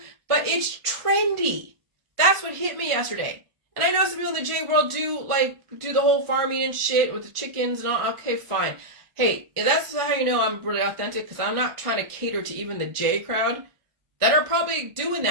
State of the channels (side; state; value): left; late; 1.4 ms